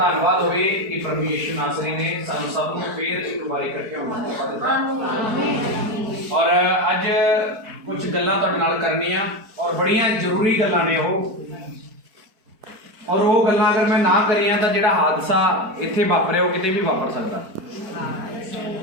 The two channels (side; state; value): left; late; 4.5 ms